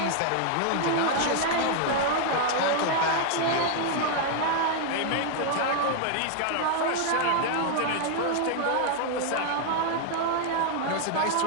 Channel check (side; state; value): both; different; correlation 0.00